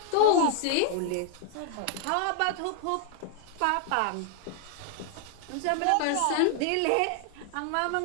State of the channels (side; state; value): both; different; correlation 0.00